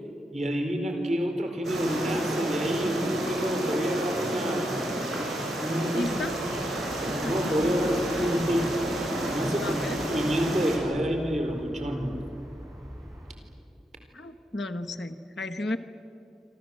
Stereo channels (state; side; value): normal; both; correlation 0.81